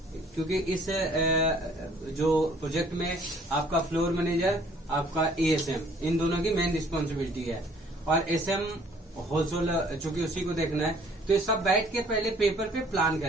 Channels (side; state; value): both; normal; correlation 0.58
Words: क्योंकि इस जो प्रोजेक्ट में आपका फ्लोर मैनेजर, आपका एएसएम, इन दोनों की मेन रिस्पॉन्सिबिलिटी है, और एसएम होलसेल चूंकि उसी को देखना है। तो ये सब बैठ के पहले पेपर पे प्लान